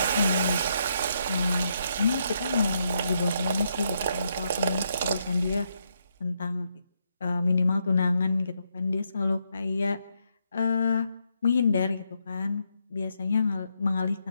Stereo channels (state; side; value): inverted; both; correlation -0.78